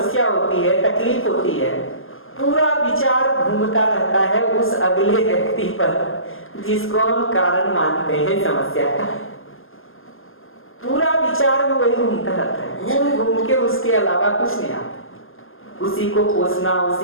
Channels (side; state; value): right; late; 0.59 ms